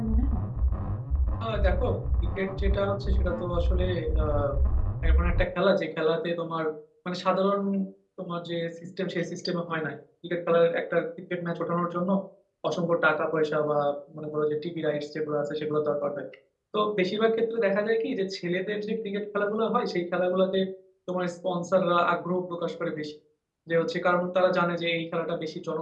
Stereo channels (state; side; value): identical; both; correlation 1.00